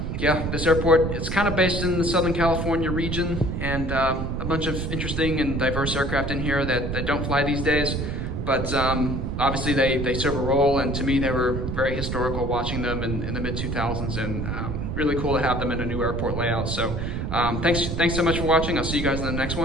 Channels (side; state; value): right; noise; rumble, 2 dB below the sound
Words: yeah, this airport, it's kind of based in the Southern California region, and a bunch of interesting and diverse aircraft in here that don't fly these days. But obviously they serve a role, and to me they were very historical watching them in the mid-2000s, and really cool to have them in a new airport layout. So thanks so much for watching. I'll see you guys in the next